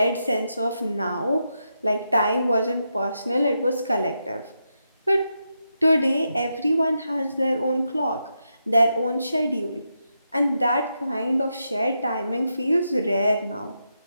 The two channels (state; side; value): inverted; both; correlation -0.85